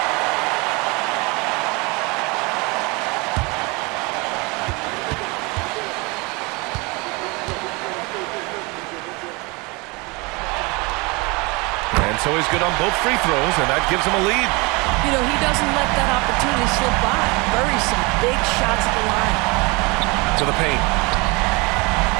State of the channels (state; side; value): quieter; left; 27.0 dB